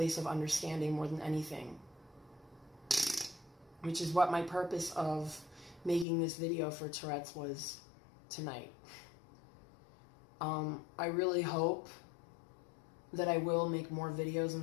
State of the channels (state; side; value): drops out; right; at 6.1 s